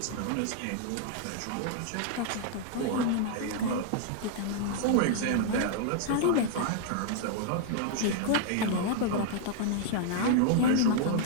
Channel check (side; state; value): both; different; correlation -0.01